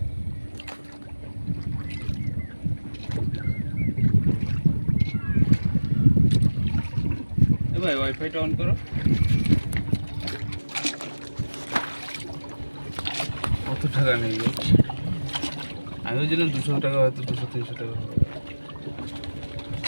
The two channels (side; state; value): both; inverted; correlation -1.00